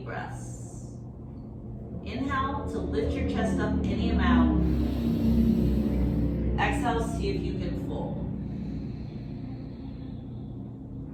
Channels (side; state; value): both; identical; correlation 1.00